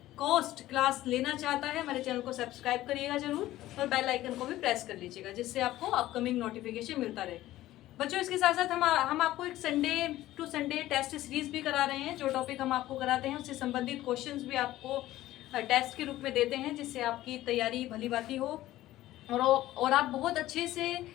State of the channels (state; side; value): quieter; right; 15.3 dB